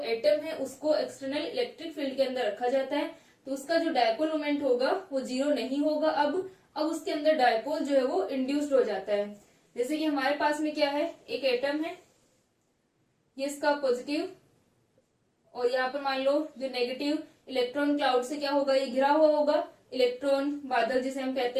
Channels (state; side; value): identical; both; correlation 1.00